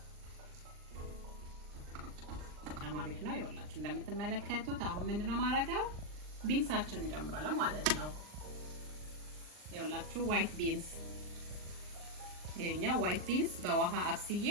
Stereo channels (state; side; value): late; left; 39 ms